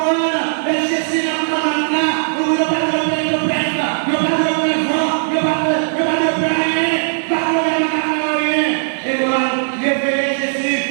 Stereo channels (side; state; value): left; silent; 68 dB below the other